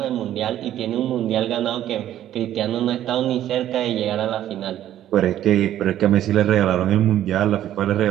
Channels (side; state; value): left; quieter; 12.0 dB